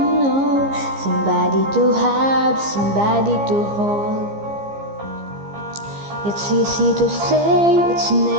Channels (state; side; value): late; left; 15 ms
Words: know, somebody to have, somebody to hold. It's easy to say, it's